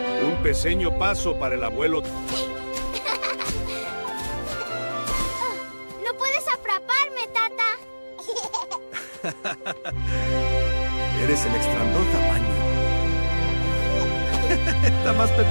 Un pequeño paso para el abuelo. ¡No puedes atraparme, Tata! Eres el extrandor tamaño. Está más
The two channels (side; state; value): both; inverted; correlation -1.00